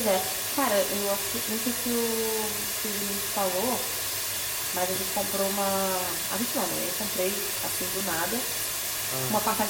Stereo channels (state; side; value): identical; both; correlation 1.00